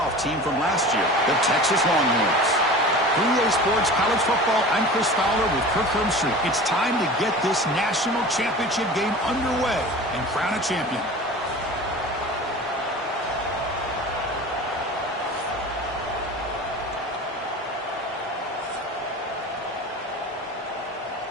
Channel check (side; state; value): both; normal; correlation 0.37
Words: team from last year, the Texas Longhorns. 3A Sports College Football, I'm Chris Fowler with Kirk Herbstreit. It's time to get this national championship game underway and crown a champion.